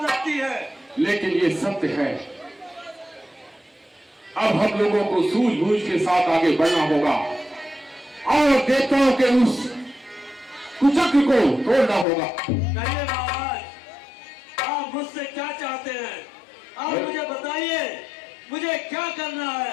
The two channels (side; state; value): right; drops out; at 12.1 s